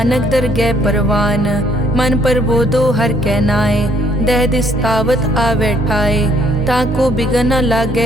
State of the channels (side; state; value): both; normal; correlation 0.65